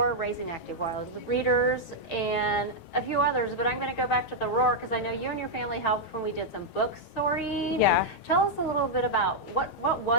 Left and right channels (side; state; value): right; late; 9.0 ms